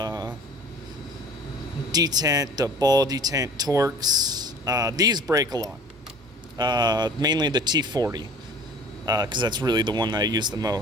detent, the ball detent Torx. These break a lot, mainly the T40, because that's really the one that I use the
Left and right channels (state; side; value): normal; both; correlation 0.46